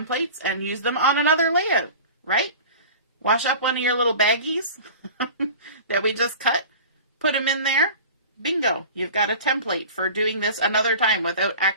and use them on another layout, right? Wash up one of your little baggies that we just cut. Put them in there. Bingo. You've got a template for doing this another time without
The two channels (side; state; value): both; inverted; correlation -0.38